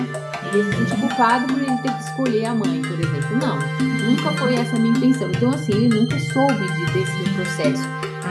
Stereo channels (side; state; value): both; identical; correlation 1.00